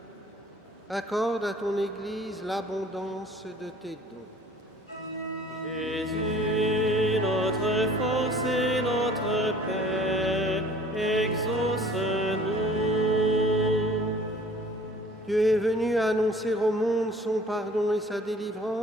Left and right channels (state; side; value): normal; both; correlation 0.51